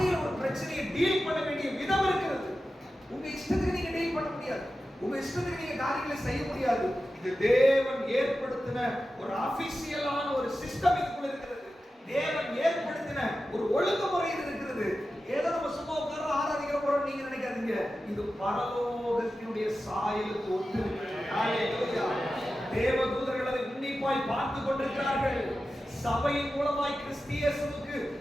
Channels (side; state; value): both; normal; correlation 0.93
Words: ஒரு பிரச்சனையை டீல் பண்ண வேண்டிய விதம் இருக்கிறது. உங்க இஷ்டத்துக்கு நீங்க டீல் பண்ண முடியாது, உங்க இஷ்டத்துக்கு நீங்க காரியங்களை செய்ய முடியாது. இது தேவன் ஏற்படுத்தின ஒரு ஆபீஷியலான ஒரு சிஸ்டம் இதுக்குள்ள இருக்கிறது. தேவன் ஏற்படுத்தின ஒரு ஒழுங்குமுறை இது இருக்கிறது. ஏதோ நம்ம சும்மா உட்கார்ந்து ஆராதிக்கிற போறோம் நீங்க நினைக்காதீங்க. இது பரலோகத்தினுடைய சாயலுக்கு ஒத்து இருக்கிறது. ஹalleluya. தேவதூதர்கள் அதை உன்னிப்பாய் பார்த்து கொண்டிருக்கிறார்கள். சபையின் மூலமாய் கிறிஸ்தியேசுவுக்கு